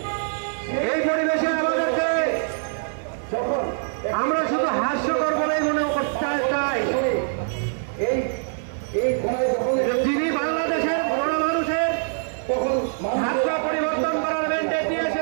এই পরিবেশে আমাদেরকে যখন আমরা শুধু হাস্যকর বলেই মনে করতে চাই। এই ঘোড়ায় যখন যিনি বাংলাদেশের বড় মানুষের তখন ভাগ্য পরিবর্তন করার ম্যান্ডেট নিয়ে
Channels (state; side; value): silent; left; digital silence